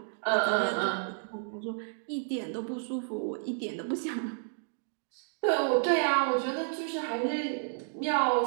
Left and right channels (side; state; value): left; silent; digital silence